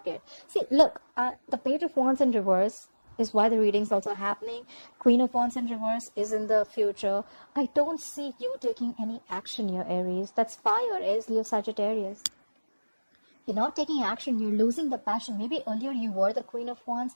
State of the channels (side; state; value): both; inverted; correlation -1.00